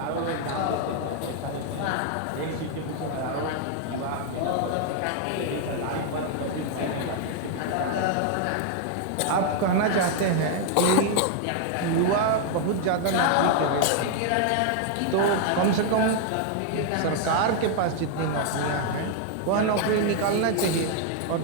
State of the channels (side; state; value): both; different; correlation 0.00